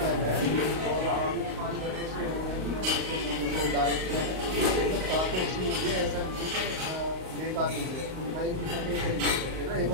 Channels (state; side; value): late; left; 38 ms